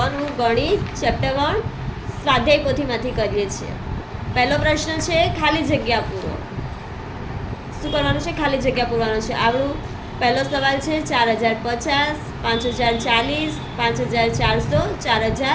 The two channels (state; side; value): identical; both; correlation 1.00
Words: નું ગણિત ચેપ્ટર 1 સ્વાધ્યાય પોથીમાંથી કરીએ છીએ. પહેલો પ્રશ્ન છે ખાલી જગ્યા પૂરો. શું કરવાનું છે? ખાલી જગ્યા પૂરવાનું છે. આપણું પહેલો સવાલ છે 4050, 5040, 5400,